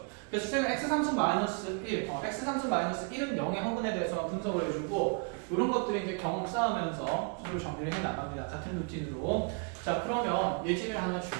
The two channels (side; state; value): left; quieter; 37.0 dB